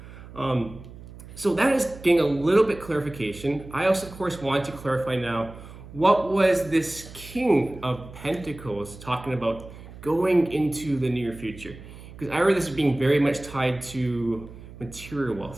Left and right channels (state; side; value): noise; right; hum, 16 dB below the sound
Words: So that is getting a little bit clarification. I also, of course, want to clarify now, what was this King of Pentacles talking about going into the near future? Because I read this as being very much tied to material